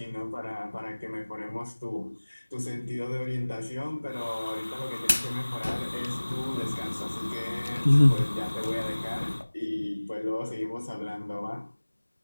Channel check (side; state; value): both; inverted; correlation -1.00